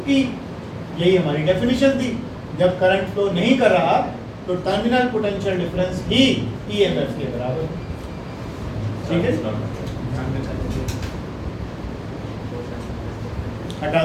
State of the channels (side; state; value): both; identical; correlation 1.00